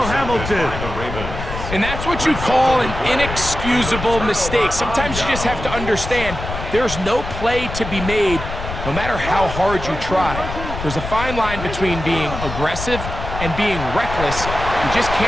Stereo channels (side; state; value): left; noise; rumble, 7 dB below the sound